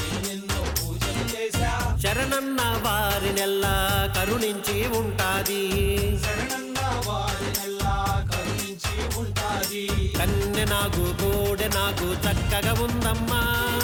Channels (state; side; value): identical; both; correlation 1.00